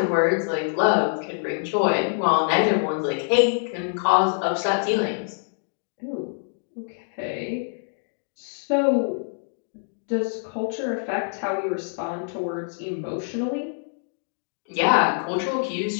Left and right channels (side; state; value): right; silent; digital silence